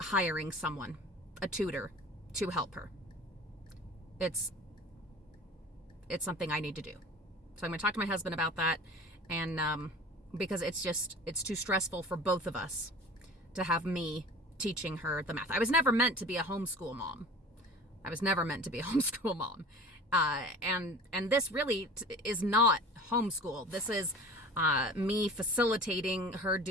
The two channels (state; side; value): normal; both; correlation 0.40